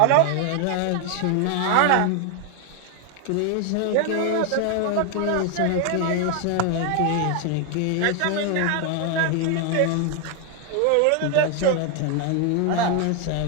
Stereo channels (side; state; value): both; different; correlation 0.01